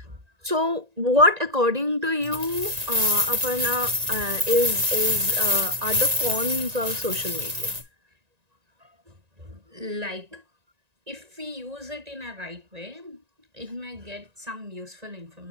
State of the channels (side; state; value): left; late; 1.9 ms